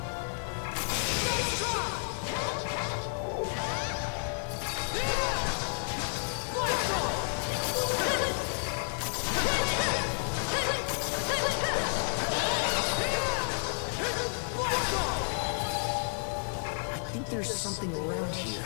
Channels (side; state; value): right; silent; 56 dB below the other